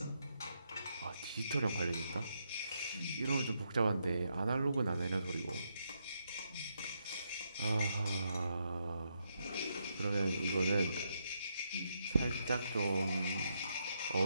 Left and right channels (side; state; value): both; inverted; correlation -0.80